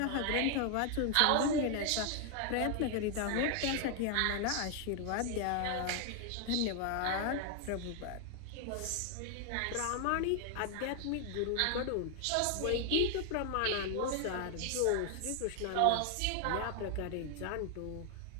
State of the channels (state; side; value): different; both; correlation 0.00